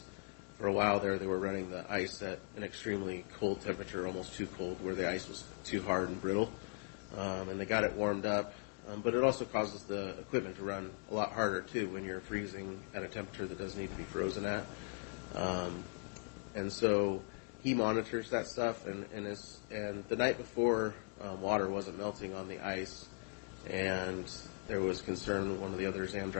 for a while there they were running the ice at an extremely cold temperature, almost too cold, where the ice was too hard and brittle. And they got it warmed up, but it also causes the equipment to run a lot harder too when you're freezing at a temperature that doesn't need to be frozen at. And so he monitors that stuff, and the night before, water wasn't melting on the ice, and there was concern. One of the other exam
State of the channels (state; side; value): quieter; right; 39.8 dB